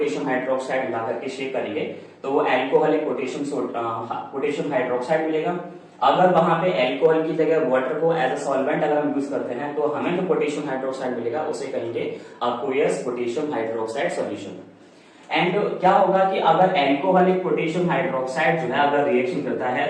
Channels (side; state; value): both; identical; correlation 1.00